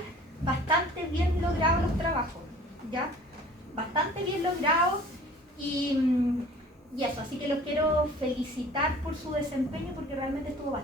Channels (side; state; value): both; normal; correlation 0.48